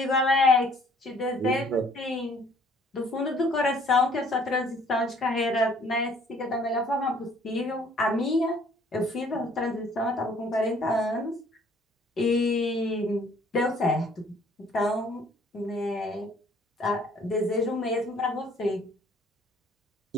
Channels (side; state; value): both; normal; correlation 0.59